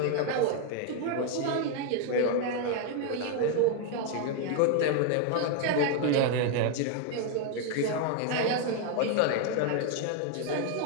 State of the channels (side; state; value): both; different; correlation 0.01